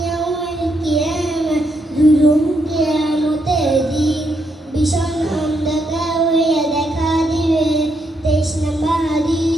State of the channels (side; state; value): both; normal; correlation 0.78